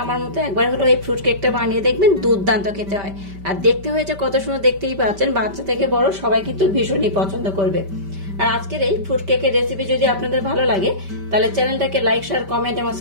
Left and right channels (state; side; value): late; left; 5.1 ms